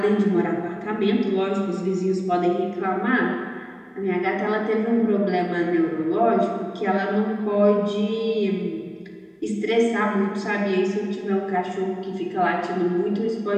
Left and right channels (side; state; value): both; identical; correlation 1.00